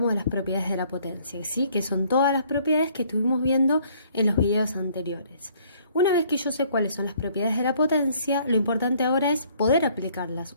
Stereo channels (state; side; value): inverted; both; correlation -0.61